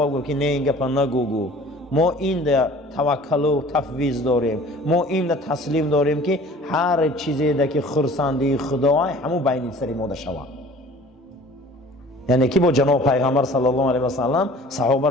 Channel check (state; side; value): normal; both; correlation 0.47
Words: گفت که نه این گپ نگو، ما این ده توکل و تفویض داریم، ما این ده تسلیم داریم که هر چیزی ده که خرسندی خدای همو بین سری ما ده شود. یعنی که با جناب پیغمبر صلی الله علیه و سلم صحابه